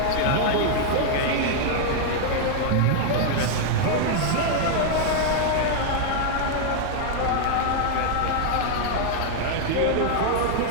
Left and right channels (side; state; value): both; different; correlation 0.00